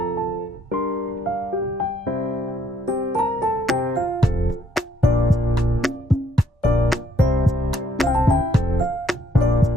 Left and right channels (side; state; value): both; normal; correlation 0.68